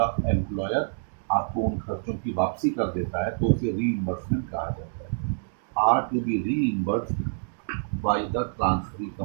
एम्प्लॉयर आपको उन खर्चों की वापसी कर देता है तो उसे रीइंबर्समेंट कहा जाता है। Are to be reimbursed by the transferee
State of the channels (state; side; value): silent; left; digital silence